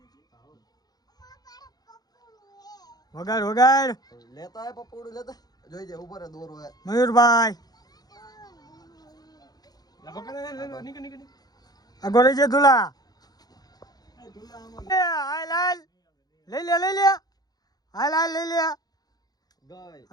વગાડ વગાડ લેતા હે પપોડું લેતા જોઈ જે ઉપર દોરો હે મયુરભાઈ આગળ છે ધુલા હાલ હાલ લઈ લે હાલ હાલ લઈ લે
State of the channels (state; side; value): late; right; 0.19 ms